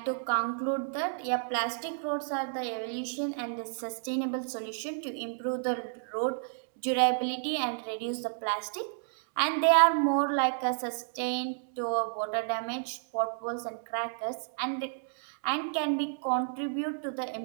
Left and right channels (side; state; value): left; silent; digital silence